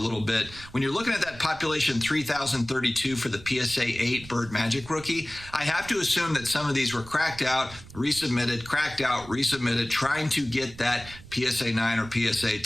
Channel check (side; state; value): right; noise; rumble, 18 dB below the sound